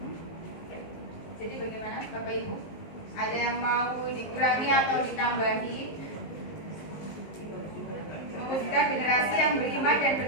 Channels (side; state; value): right; late; 19 ms